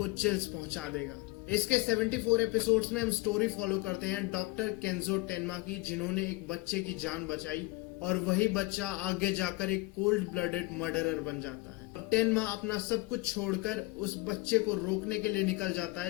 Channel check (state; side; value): quieter; right; 22.8 dB